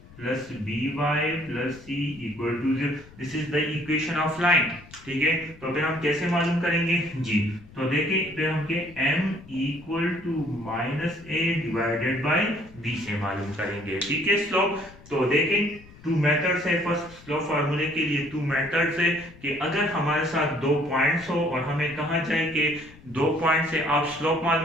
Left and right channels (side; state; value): left; noise; rumble, 21 dB below the sound